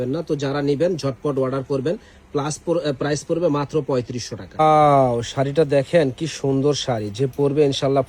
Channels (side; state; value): both; identical; correlation 1.00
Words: না। তো যারা নিবেন ঝটপট অর্ডার করবেন। প্রাইস পড়বে মাত্র 3500 টাকা। শাড়িটা দেখেন কি সুন্দর শাড়ি, যে পরবে ইনশাল্লাহ